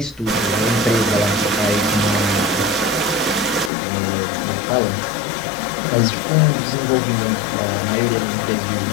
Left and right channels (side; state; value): right; drops out; at 3.7 s